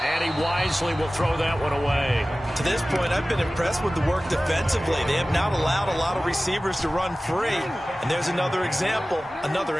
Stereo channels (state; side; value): normal; both; correlation 0.97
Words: And he wisely will throw that one away. To this point, I've been impressed with the work defensively. They have not allowed a lot of receivers to run free. And there's another example, another